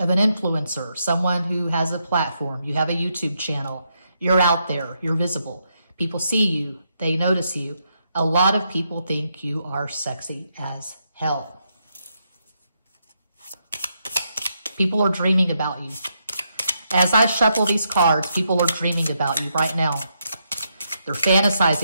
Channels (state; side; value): inverted; both; correlation -0.80